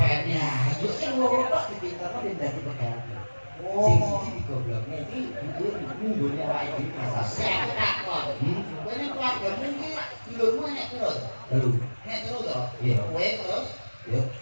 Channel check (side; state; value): both; inverted; correlation -1.00